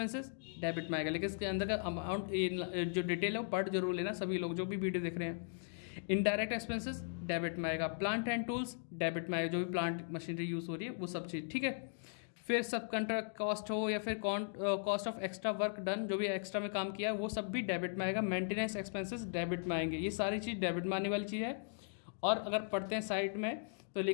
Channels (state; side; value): silent; right; digital silence